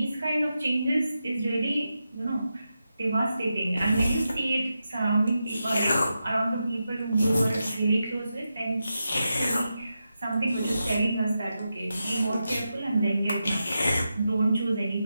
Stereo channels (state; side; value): inverted; both; correlation -0.89